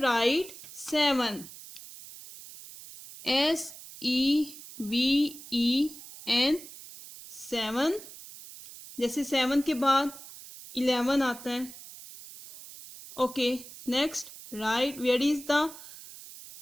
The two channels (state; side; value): noise; right; hiss, 16 dB below the sound